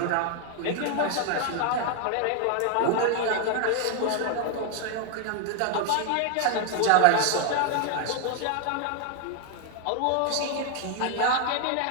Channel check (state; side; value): different; both; correlation 0.00